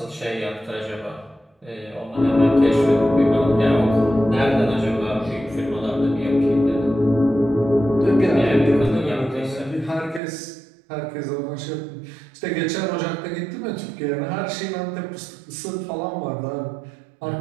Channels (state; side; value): drops out; left; at 10.2 s